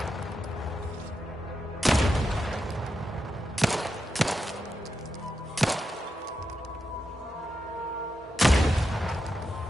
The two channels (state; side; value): normal; both; correlation 0.87